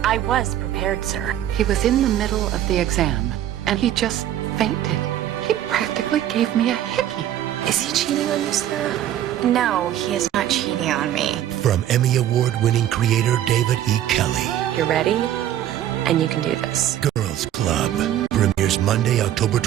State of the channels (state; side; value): quieter; left; 11.8 dB